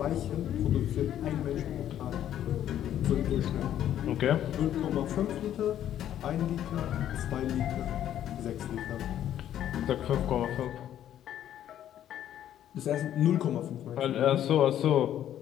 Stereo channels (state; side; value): quieter; right; 11.1 dB